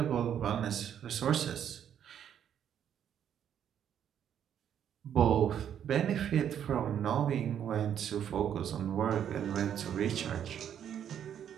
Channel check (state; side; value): quieter; left; 9.3 dB